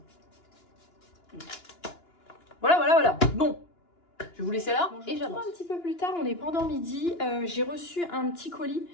Voilà. Bon. Je vais vous laisser là. Et j'attends un petit peu plus tard, on est pendant midi. J'ai reçu un petit colis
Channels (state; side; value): late; right; 2.9 ms